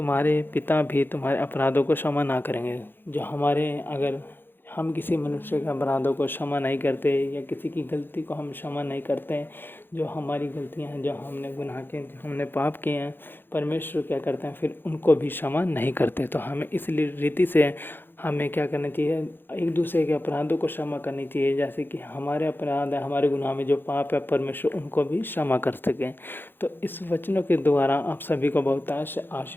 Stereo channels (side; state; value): right; late; 0.099 ms